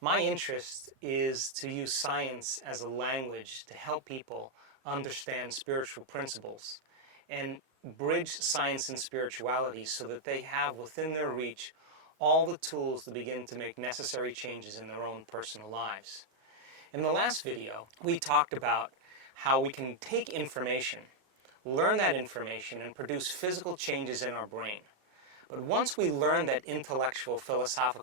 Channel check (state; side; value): late; left; 36 ms